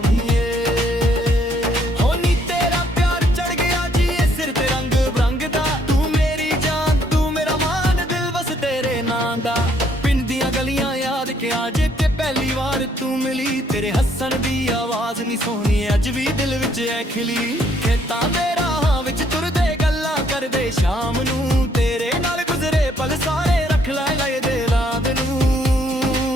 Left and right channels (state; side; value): normal; both; correlation 0.68